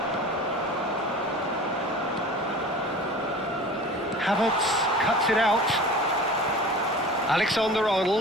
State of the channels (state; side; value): normal; both; correlation 0.38